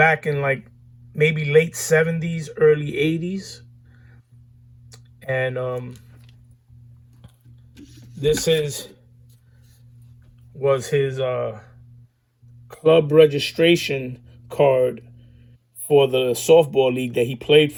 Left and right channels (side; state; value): both; identical; correlation 1.00